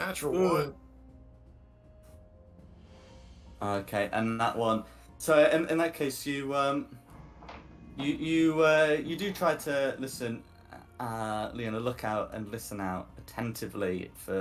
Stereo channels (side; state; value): both; identical; correlation 1.00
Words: one. Okay, and that one. So in that case, you do try to listen, Leona, look out and listen out attentively